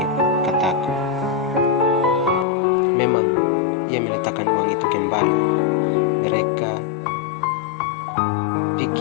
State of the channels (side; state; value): right; drops out; at 2.5 s